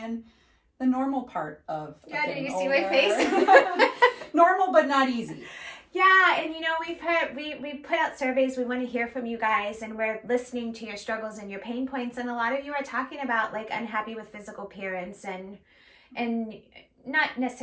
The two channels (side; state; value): both; identical; correlation 1.00